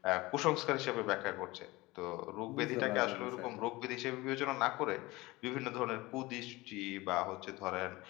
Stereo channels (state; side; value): quieter; right; 21.1 dB